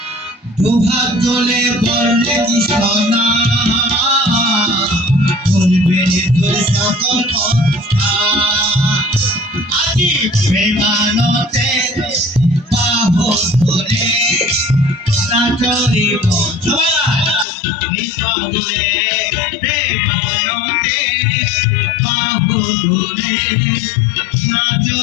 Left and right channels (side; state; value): right; drops out; at 17.4 s